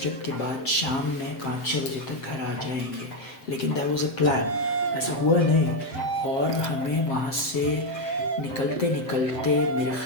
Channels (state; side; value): late; right; 7.8 ms